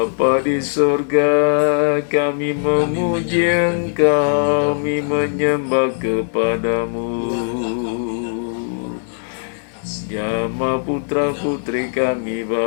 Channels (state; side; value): silent; right; 64 dB below the other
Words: di surga, kami memuji Engkau, kami menyembah kepadamu. Jama putra putri kami